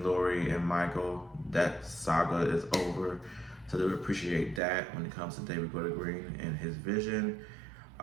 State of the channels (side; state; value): left; drops out; at 4.6 s